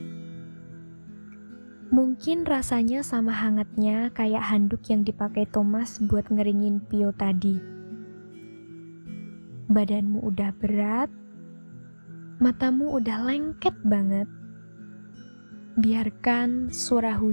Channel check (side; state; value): both; inverted; correlation -1.00